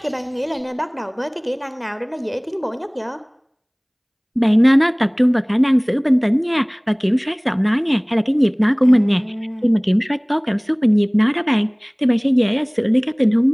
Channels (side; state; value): both; identical; correlation 1.00